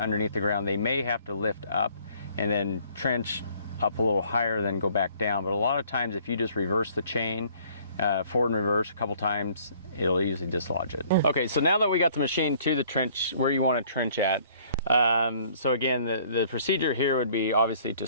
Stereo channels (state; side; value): inverted; both; correlation -0.58